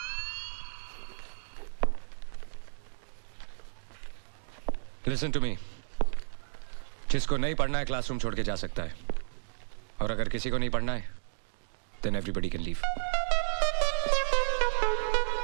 Listen to me. जिसको नहीं पढ़ना है classroom छोड़ के जा सकता है, और अगर किसी को नहीं पढ़ना है, then everybody can leave.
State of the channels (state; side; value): silent; left; digital silence